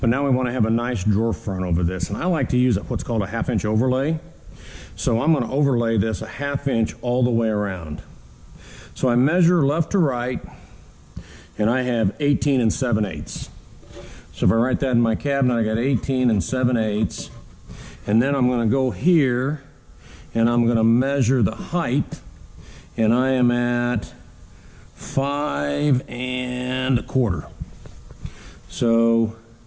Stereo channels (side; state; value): both; identical; correlation 1.00